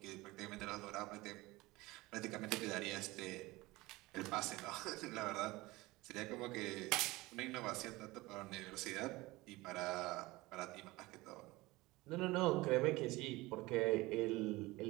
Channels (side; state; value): left; quieter; 20.7 dB